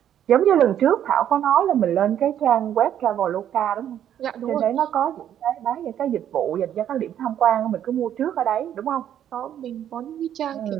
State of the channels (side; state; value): left; quieter; 10.3 dB